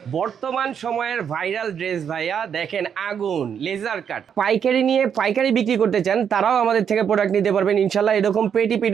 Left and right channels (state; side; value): quieter; left; 7.9 dB